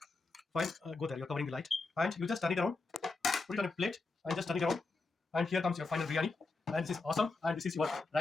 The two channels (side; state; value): right; quieter; 3.7 dB